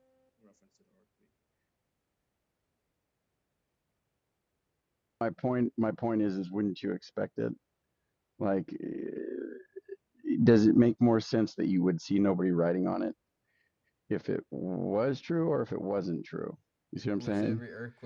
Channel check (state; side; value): identical; both; correlation 1.00